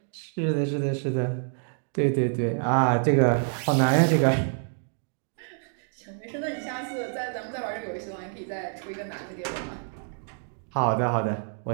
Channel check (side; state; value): left; silent; 60 dB below the other